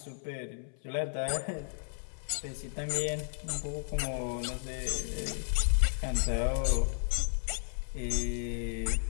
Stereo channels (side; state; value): right; silent; 55 dB below the other